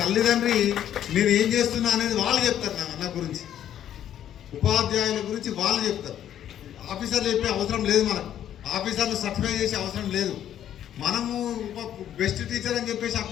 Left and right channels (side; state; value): right; quieter; 10.6 dB